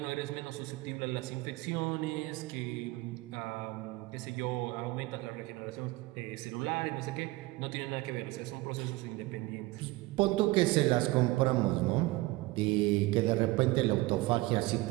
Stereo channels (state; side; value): quieter; left; 20.3 dB